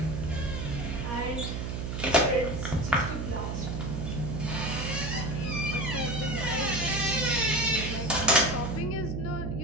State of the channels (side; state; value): right; noise; hum, 3 dB below the sound